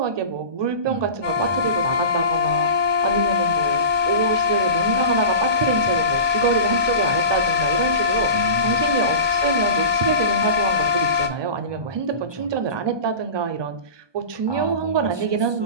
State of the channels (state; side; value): late; left; 1.2 ms